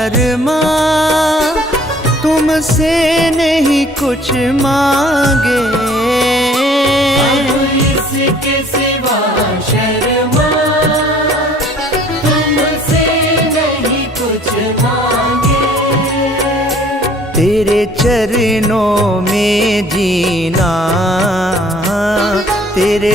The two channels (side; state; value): both; normal; correlation 0.55